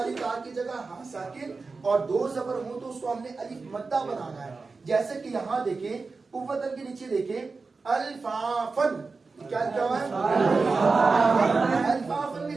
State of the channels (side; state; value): left; quieter; 4.2 dB